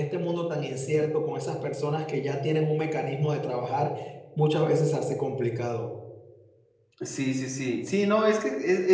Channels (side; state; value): both; identical; correlation 1.00